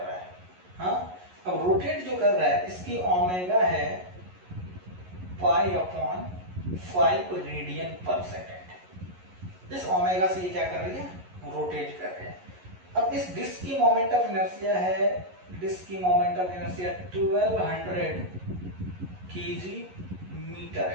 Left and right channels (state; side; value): late; left; 11 ms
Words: है। हाँ, अब रोटेट जो कर रहा है इसकी ओमेगा है पाई अपॉन 5 रेडियन पर सेकेंड। इस ओमेगा से ये क्या कर रही है, रोटेट कर रही है। अब इस डिस्क की मोमेंट ऑफ इनर्शिया है, डिस्क की moment of inertia 1200 kg